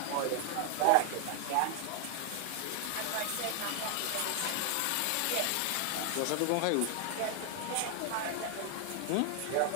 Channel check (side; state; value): both; different; correlation 0.00